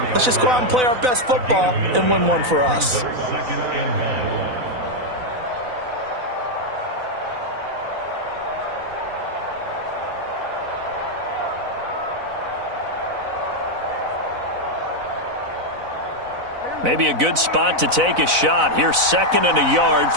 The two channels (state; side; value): late; left; 4.0 ms